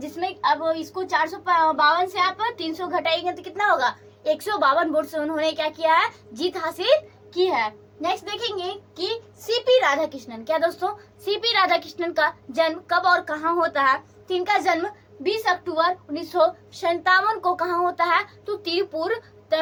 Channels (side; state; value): both; identical; correlation 1.00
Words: अब इसको 452 से आप 300 घटाएंगे तो कितना होगा, 152 वोट से उन्होंने क्या किया है, जीत हासिल की है। नेक्स्ट देखेंगे कि सीपी राधाकृष्णन, क्या दोस्तों, सीपी राधाकृष्णन का जन्म कब और कहाँ होता है, तो इनका जन्म 20 अक्टूबर 1957 को कहाँ होता है, तो तिरुपुर